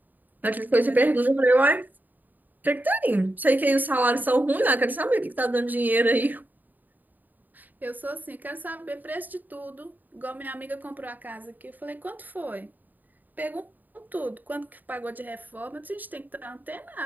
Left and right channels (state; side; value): late; left; 0.086 ms